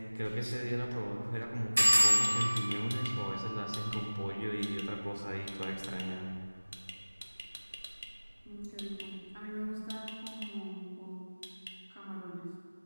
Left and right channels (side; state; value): both; inverted; correlation -1.00